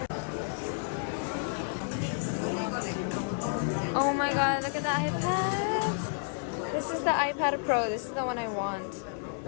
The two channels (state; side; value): silent; right; 57 dB below the other